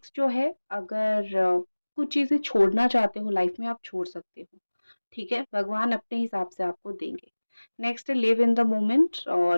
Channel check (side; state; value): both; inverted; correlation -1.00